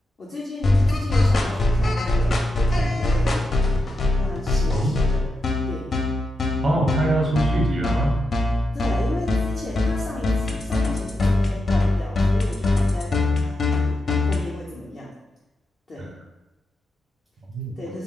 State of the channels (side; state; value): both; normal; correlation 0.87